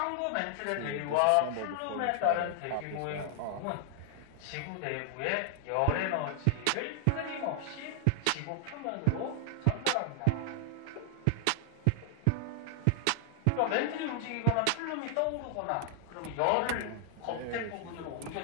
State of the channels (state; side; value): different; both; correlation 0.00